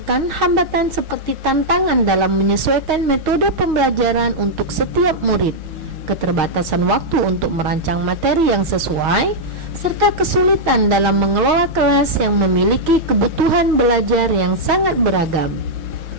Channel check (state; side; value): late; left; 6.4 ms